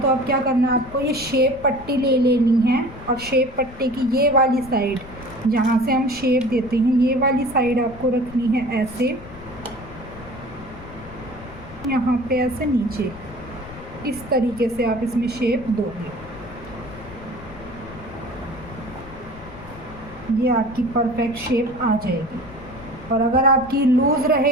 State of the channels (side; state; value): left; noise; rumble, 17 dB below the sound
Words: तो अब क्या करना है आपको, ये शेप पट्टी ले लेनी है और शेप पट्टी की ये वाली साइड जहाँ से हम शेप देते हैं ये वाली साइड आपको रखनी है ऐसे, यहाँ पे ऐसे नीचे इस तरीके से आप इसमें शेप दोगे। ये आपकी परफेक्ट शेप आ जाएगी। और अगर आपकी लूज़